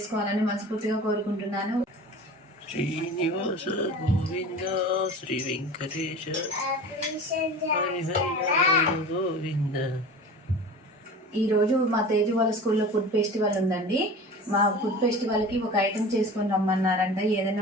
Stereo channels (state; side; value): normal; both; correlation 0.36